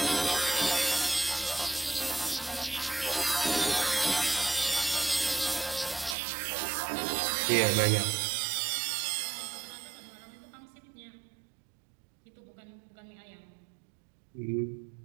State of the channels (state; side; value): drops out; left; at 6.2 s